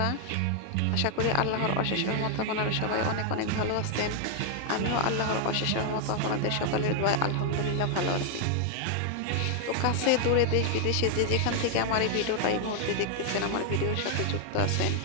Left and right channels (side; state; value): both; different; correlation 0.00